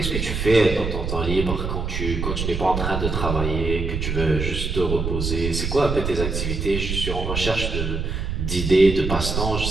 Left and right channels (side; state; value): right; noise; rumble, 2 dB below the sound